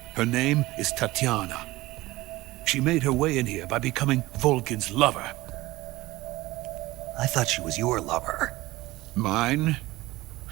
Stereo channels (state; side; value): quieter; left; 18.8 dB